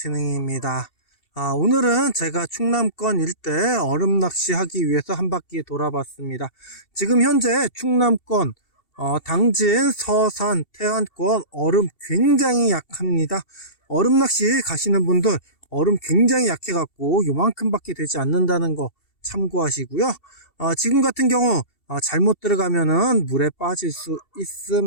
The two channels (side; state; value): right; late; 2.7 ms